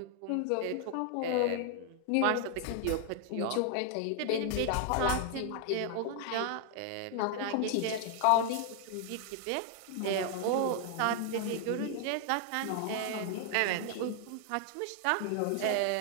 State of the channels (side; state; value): both; different; correlation 0.00